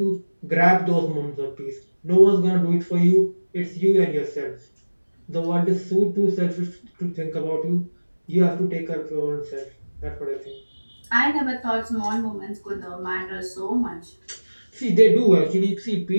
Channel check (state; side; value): inverted; both; correlation -1.00